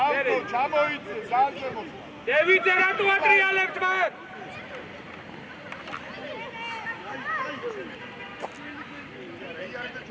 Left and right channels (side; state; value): both; identical; correlation 1.00